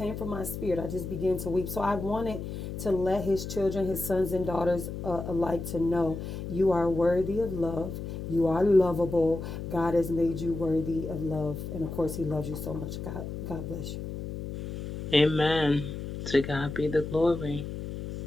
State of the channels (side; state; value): left; noise; hum, 7 dB below the sound